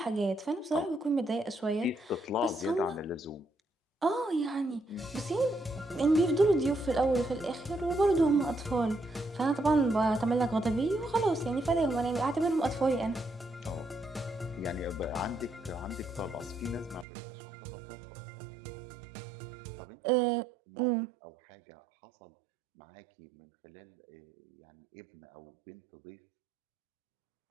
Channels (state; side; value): drops out; left; at 17.1 s